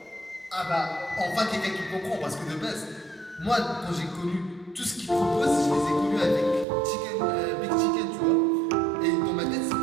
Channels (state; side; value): drops out; left; at 6.7 s